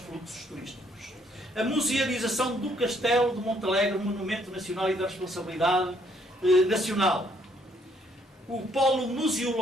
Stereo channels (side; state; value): both; normal; correlation 0.68